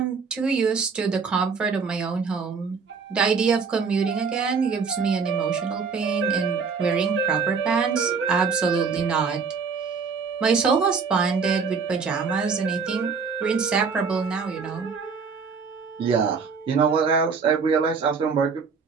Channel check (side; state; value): left; quieter; 5.4 dB